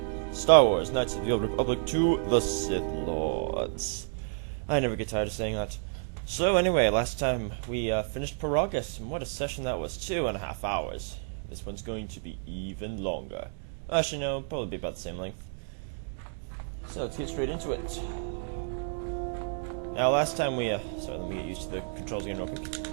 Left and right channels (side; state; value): left; silent; digital silence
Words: Star Wars Knights of the Old Republic 2, the Sith Lords. I never get tired of saying that. So anyway, last time we finished Paragus, and what a session that was, 2.5 hours. This one's going to be even longer. Actually no, probably be about the same length. So let's get straight into it. Now last time we, sorry, let me get used to the controls again real quick.